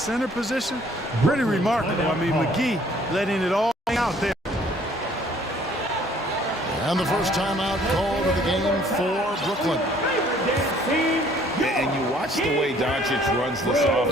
position, pretty remarkable. I mean, McGee letting it all hang out there. And the first timeout called of the game for Brooklyn. And you watch the way Doncic runs this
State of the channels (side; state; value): both; normal; correlation 0.58